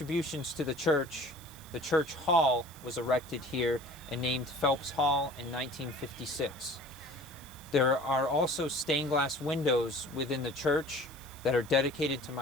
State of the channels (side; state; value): right; noise; hiss, 19 dB below the sound